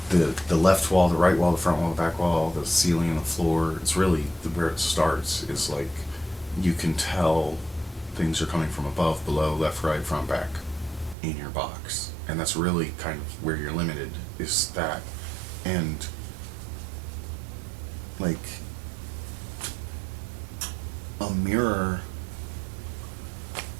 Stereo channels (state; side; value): drops out; left; at 11.2 s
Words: the left wall, the right wall, the front wall, the back wall, the ceiling and the floor. It's really where it starts is like you can tell things are coming from above, below, left, right, front, back in your box, and that's really kind of where you're limited, is that. And like a mirror,